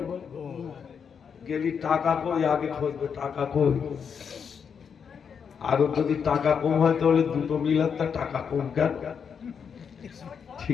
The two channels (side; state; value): right; quieter; 6.8 dB